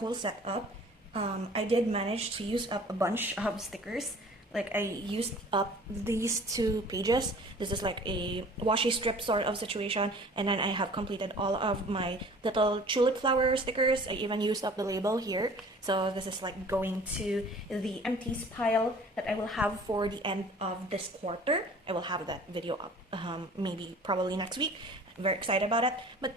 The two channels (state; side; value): normal; both; correlation 0.48